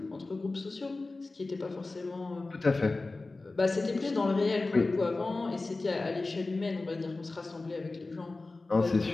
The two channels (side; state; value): right; quieter; 3.4 dB